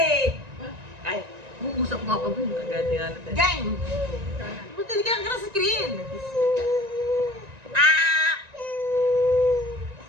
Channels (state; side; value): late; left; 1.9 ms